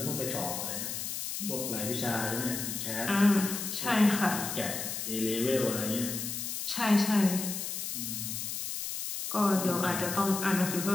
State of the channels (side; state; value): left; noise; hiss, 4 dB below the sound